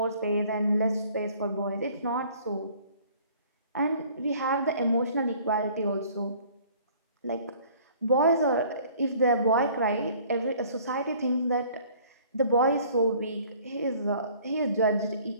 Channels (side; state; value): both; inverted; correlation -0.54